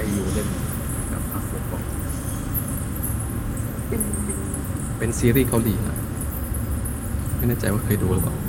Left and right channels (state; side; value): identical; both; correlation 1.00